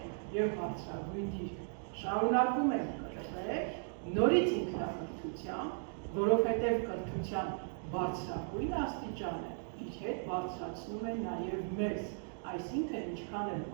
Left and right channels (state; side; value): silent; left; digital silence